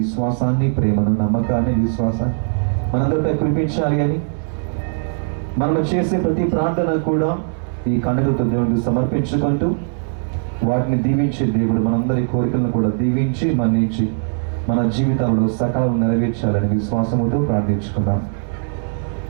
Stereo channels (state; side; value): silent; left; digital silence